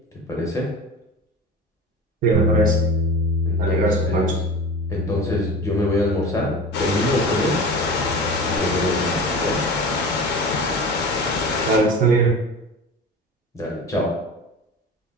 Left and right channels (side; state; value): both; normal; correlation 0.33